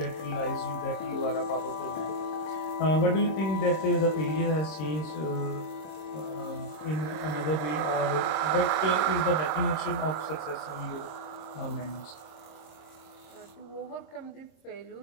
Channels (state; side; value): late; right; 26 ms